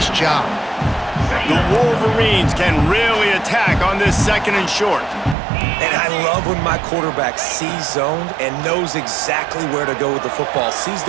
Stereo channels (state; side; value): drops out; left; at 5.4 s